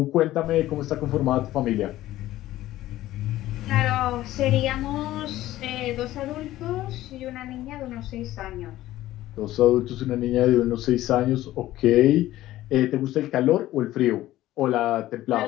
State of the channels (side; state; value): right; quieter; 15.1 dB